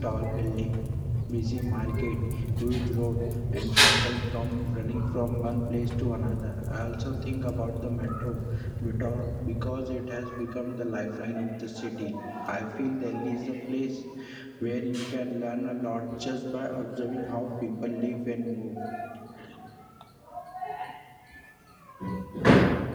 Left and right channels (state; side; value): identical; both; correlation 1.00